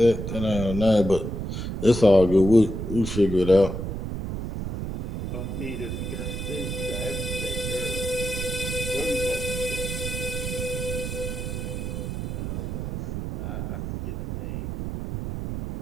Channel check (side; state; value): right; noise; rumble, 4 dB below the sound